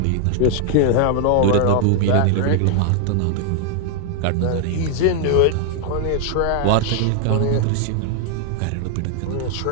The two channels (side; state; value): both; different; correlation 0.00